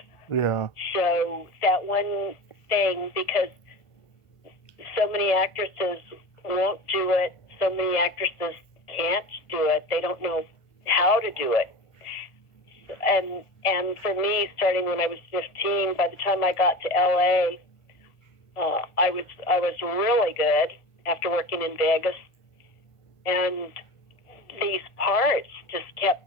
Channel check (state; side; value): late; right; 1.5 ms